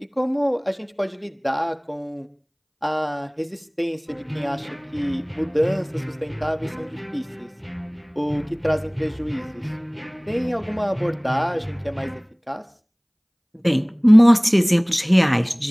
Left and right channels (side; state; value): both; identical; correlation 1.00